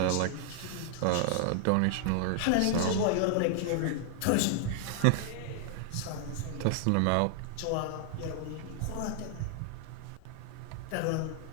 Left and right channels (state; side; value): different; both; correlation 0.00